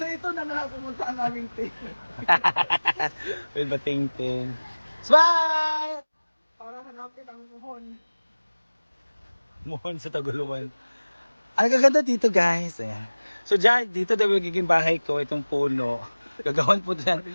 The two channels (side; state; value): both; inverted; correlation -1.00